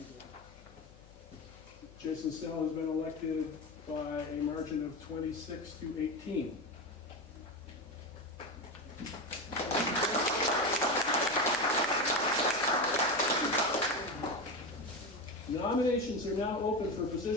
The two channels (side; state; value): left; noise; hum, 23 dB below the sound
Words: Jason Snell has been elected by a margin of 26 to 18. Nominations are now open for a